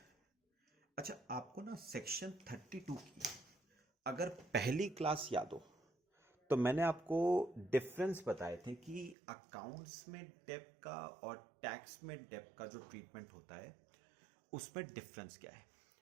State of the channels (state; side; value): drops out; left; at 9.2 s